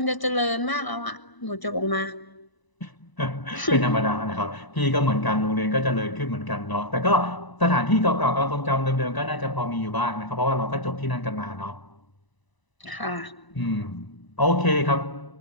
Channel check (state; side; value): late; right; 1.0 ms